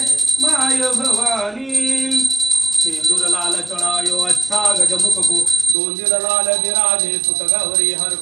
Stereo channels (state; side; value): drops out; left; at 5.8 s